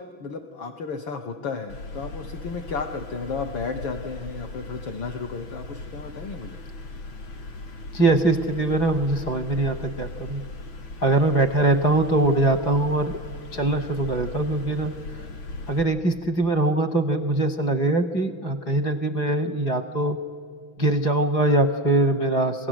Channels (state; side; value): late; right; 6.0 ms